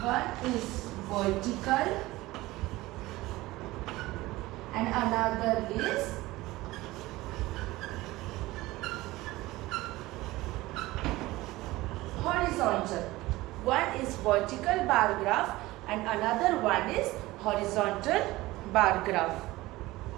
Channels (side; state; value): left; quieter; 18.9 dB